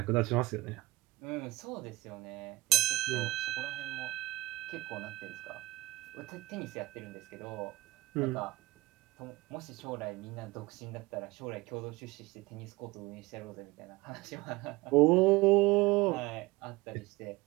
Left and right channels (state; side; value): quieter; left; 20.0 dB